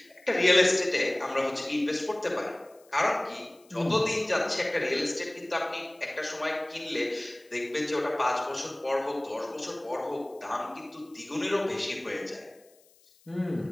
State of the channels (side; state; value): left; noise; hiss, 30 dB below the sound